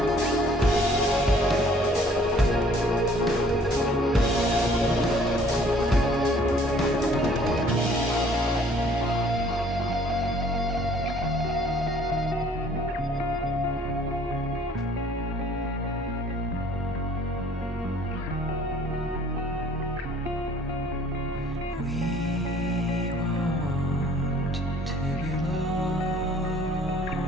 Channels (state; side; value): normal; both; correlation 0.57